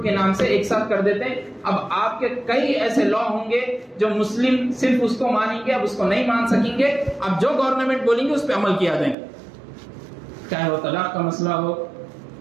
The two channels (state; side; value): drops out; left; at 9.2 s